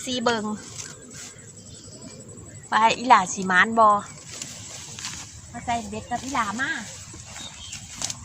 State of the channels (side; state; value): both; identical; correlation 1.00